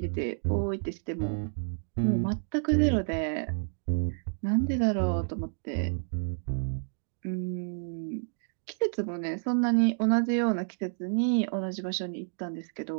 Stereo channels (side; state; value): left; silent; digital silence